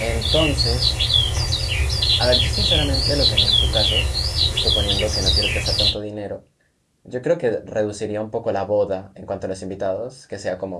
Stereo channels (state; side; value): identical; both; correlation 1.00